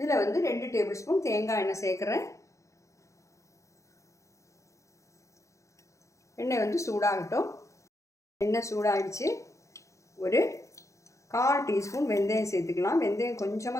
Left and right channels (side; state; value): right; late; 0.15 ms